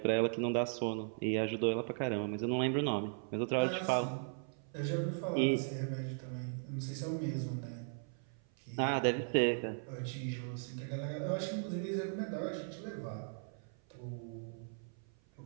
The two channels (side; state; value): left; silent; 53 dB below the other